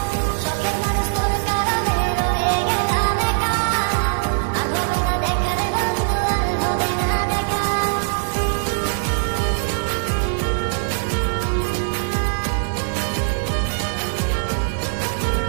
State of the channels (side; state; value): left; silent; digital silence